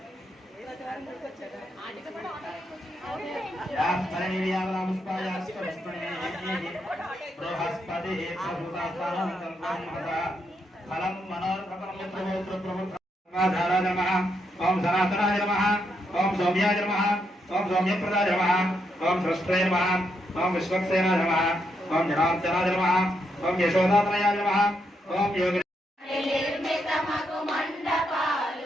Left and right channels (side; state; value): both; normal; correlation 0.79